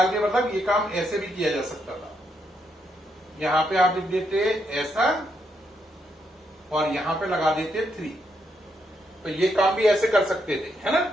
के, मतलब ये काम ऐसे भी किया जा सकता था। यहाँ पे आप लिख देते ऐसा, और यहां पे लगा देते 3। तो ये काम भी ऐसे कर सकते थे, है ना।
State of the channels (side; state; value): both; normal; correlation 0.78